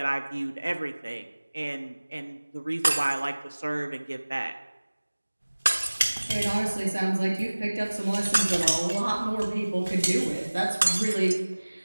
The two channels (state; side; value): inverted; both; correlation -1.00